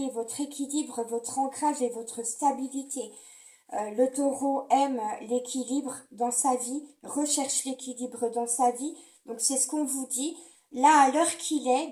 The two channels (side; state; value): both; identical; correlation 1.00